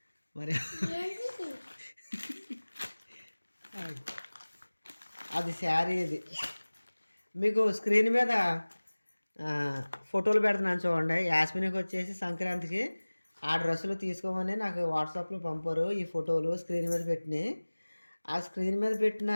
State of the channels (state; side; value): inverted; both; correlation -1.00